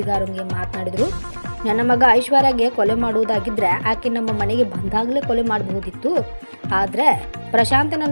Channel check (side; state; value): both; inverted; correlation -1.00